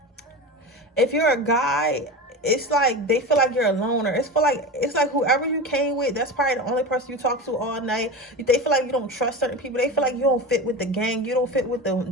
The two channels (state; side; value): normal; both; correlation 0.26